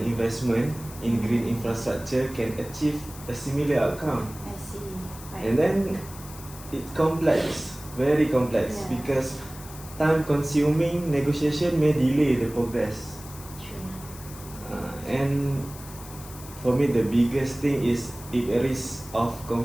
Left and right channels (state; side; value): noise; left; hiss, 16 dB below the sound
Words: investment in green infrastructure can achieve a similar outcome. I see. Right. And then it's complex, very complex, Yeah. because time-consuming negotiation may delay the progress. True. And for me, the biggest thing is it risks of